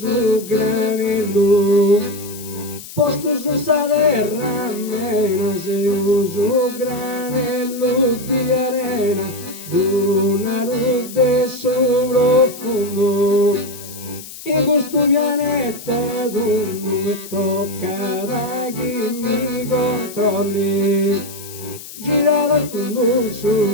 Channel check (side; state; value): left; noise; hiss, 14 dB below the sound